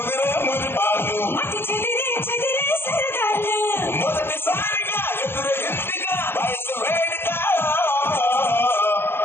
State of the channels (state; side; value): late; right; 0.11 ms